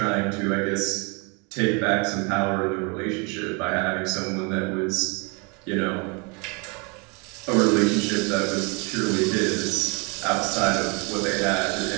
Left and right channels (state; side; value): quieter; left; 31.5 dB